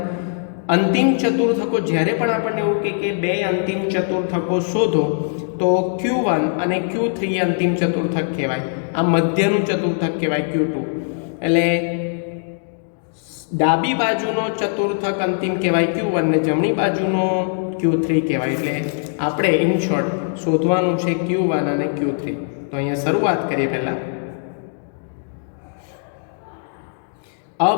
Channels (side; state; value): right; silent; digital silence